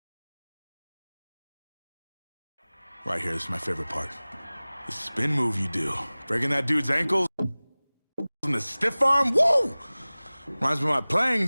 Right here, this is my favorite part. The spin move you do. Breaking that dude's ankles and the stiff arm, woo! Reminds me of my playing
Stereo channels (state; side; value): inverted; both; correlation -0.99